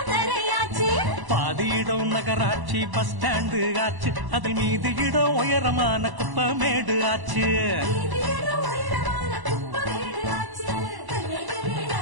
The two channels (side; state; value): left; late; 1.0 ms